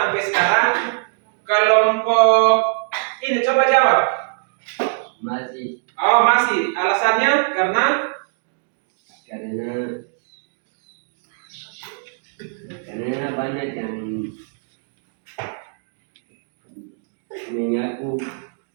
sekarang? Kelompok ini coba jawab. Masih. Oh, masih. Alasannya karena banyak yang mengaku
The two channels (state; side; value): silent; left; digital silence